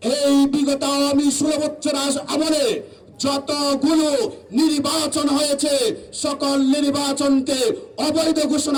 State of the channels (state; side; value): identical; both; correlation 1.00